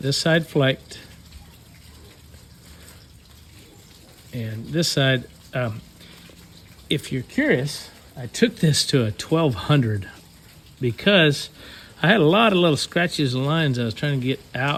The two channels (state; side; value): identical; both; correlation 1.00